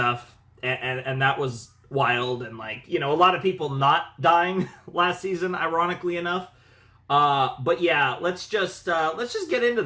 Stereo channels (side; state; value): both; identical; correlation 1.00